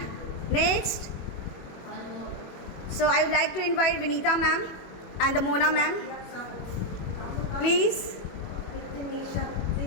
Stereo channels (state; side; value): late; right; 21 ms